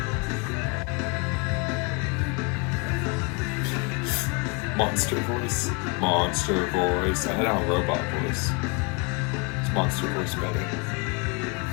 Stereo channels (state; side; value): quieter; right; 31.1 dB